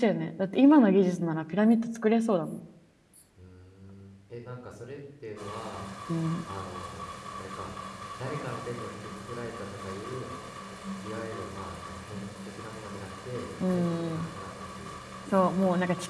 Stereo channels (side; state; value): both; identical; correlation 1.00